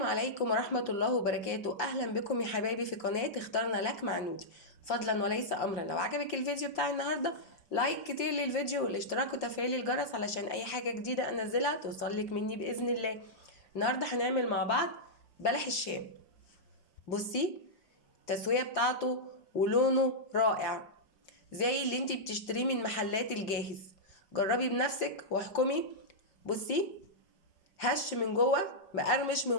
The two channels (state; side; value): late; right; 5.2 ms